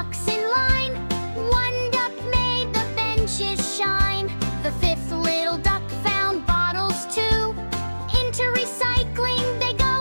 in line. One duck made the benches shine. The fifth little duck found bottles too. Into recycling they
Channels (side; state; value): both; inverted; correlation -1.00